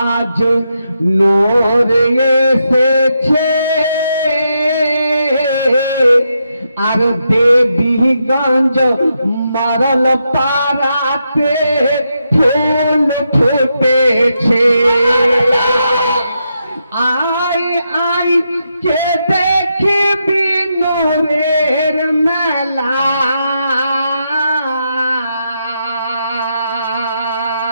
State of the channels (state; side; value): inverted; both; correlation -0.83